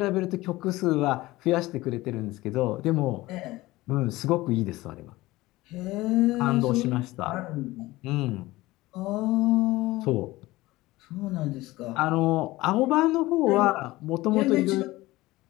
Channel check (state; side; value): quieter; right; 18.9 dB